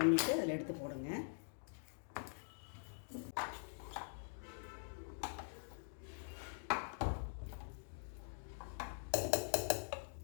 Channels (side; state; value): right; silent; digital silence